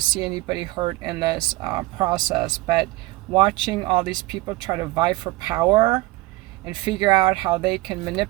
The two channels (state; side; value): quieter; left; 20.3 dB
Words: see anybody hurt in this process, but watching all these people try to vie for power and figure out how they can